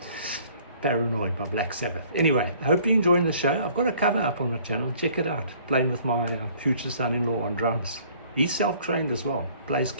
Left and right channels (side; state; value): both; inverted; correlation -0.56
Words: Paranoid by Black Sabbath. Anyway, I hope you're enjoying the show. I've got a cover up on my channel. Check it out. Playing with my future son-in-law on drums. He's self-trained as well. Plays